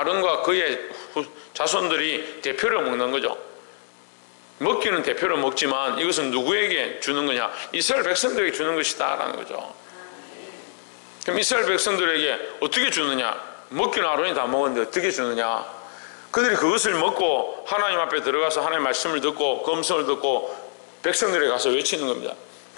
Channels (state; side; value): silent; right; digital silence